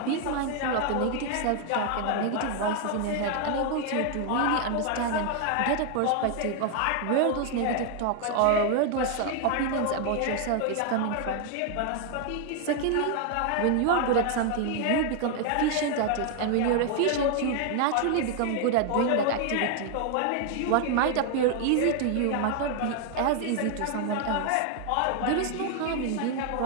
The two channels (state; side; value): different; both; correlation 0.00